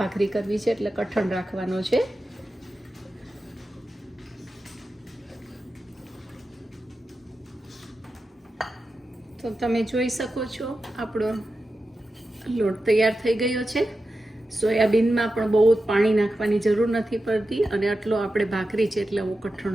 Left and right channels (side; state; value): both; normal; correlation 0.91